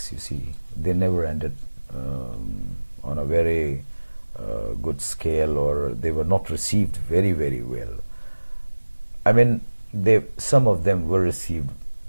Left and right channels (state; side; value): inverted; both; correlation -1.00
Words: you see, they never ended on a very good scale, or they were not received very, very well. I mean, some of them were received